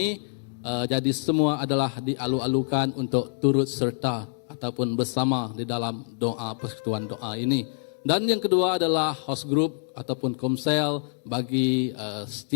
Jadi semua adalah dialu-alukan untuk turut serta ataupun bersama di dalam doa persekutuan doa ini. Dan yang kedua adalah house group ataupun komsel bagi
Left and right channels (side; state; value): right; silent; digital silence